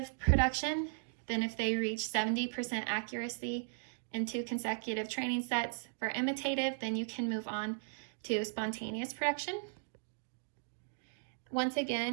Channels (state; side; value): silent; left; digital silence